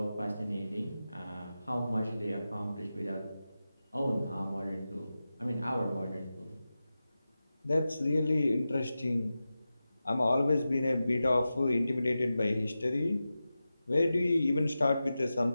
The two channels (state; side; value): inverted; both; correlation -0.93